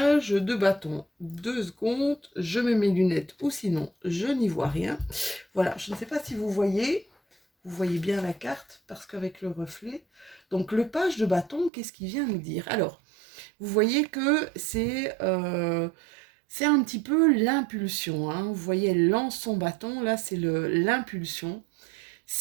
de bâton. 2 secondes, je mets mes lunettes ou sinon je n'y vois rien. Voilà, je ne sais pas si vous voyez bien la carte parce qu'avec le reflet. Donc le page de bâton, qu'est-ce qu'il vient nous dire? Alors, vous voyez que c'est un petit peu l'impulsion, hein. Vous voyez, elle lance son bâton, là c'est l'impulsion.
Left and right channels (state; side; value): drops out; left; at 11.7 s